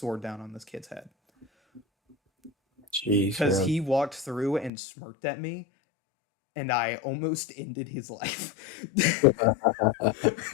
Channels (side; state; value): right; drops out; at 4.7 s